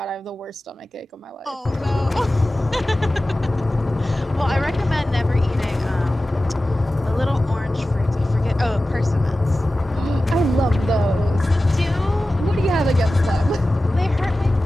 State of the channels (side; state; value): both; normal; correlation 0.95